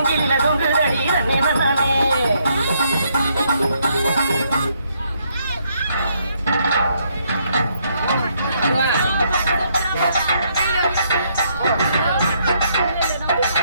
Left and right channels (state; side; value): inverted; both; correlation -0.72